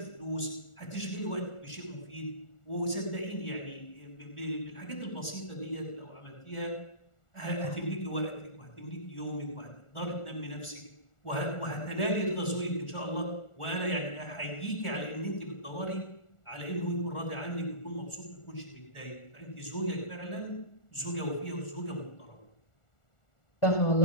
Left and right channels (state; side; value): late; right; 1.4 ms